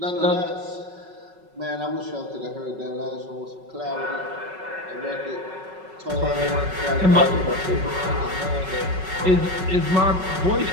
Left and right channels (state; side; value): late; left; 5.3 ms